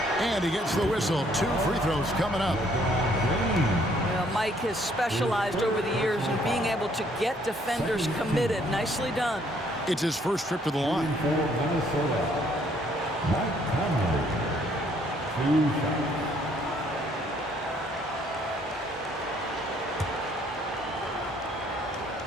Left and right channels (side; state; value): both; normal; correlation 0.65